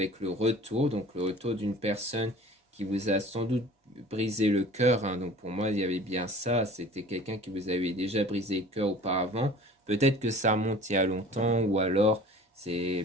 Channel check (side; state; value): both; normal; correlation 0.43